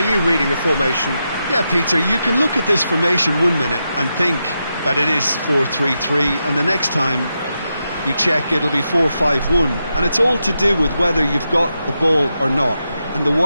reading the formation? Yeah, Peter, you can look at this formation 1 minute and think that it is 4-3-3, and the next time you check it'll be 4-5-1, and it's all to do with whether you've got the ball or not, and the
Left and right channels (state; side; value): inverted; both; correlation -0.87